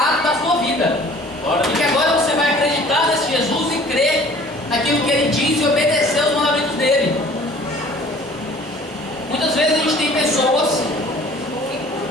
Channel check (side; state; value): both; normal; correlation 0.50